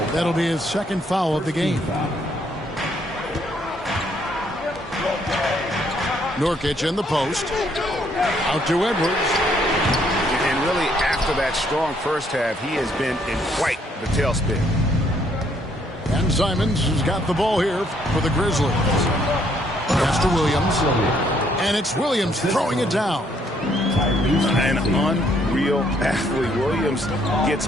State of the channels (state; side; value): normal; both; correlation 0.68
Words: That'll be his second foul of the game. Nurkic in the post. Out to Edwards. And really, after that strong first half, he has been in quite the tailspin. And Simons has got the ball here for the Grizzlies. Pass to Williams. And it's Williams throwing it down. An unreal athlete. Williams gets